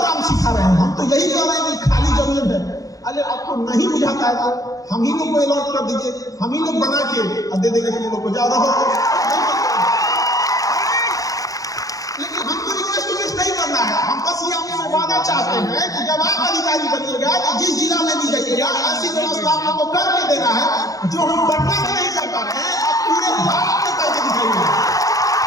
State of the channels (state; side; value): late; right; 0.17 ms